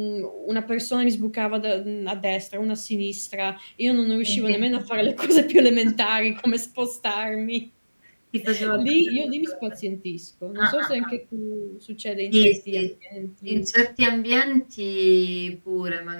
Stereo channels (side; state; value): both; inverted; correlation -1.00